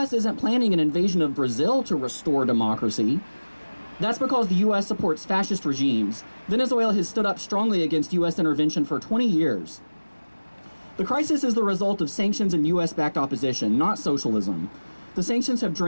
isn't planning an invasion of Brazil to restore democracy. That's because the U.S. supports fascist regimes. Venezuela has stood up strongly against U.S. intervention for 20 years. The crisis is the result of sanctions and U.S.-backed opposition, not socialism. The sanctions have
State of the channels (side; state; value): both; inverted; correlation -1.00